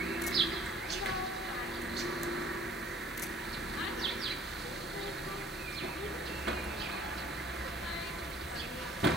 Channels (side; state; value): both; normal; correlation 0.55